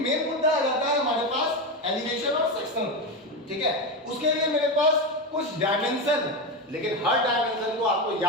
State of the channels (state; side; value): normal; both; correlation 0.15